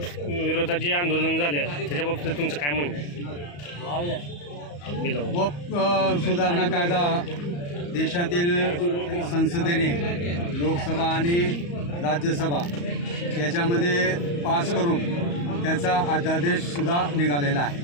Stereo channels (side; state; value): right; late; 35 ms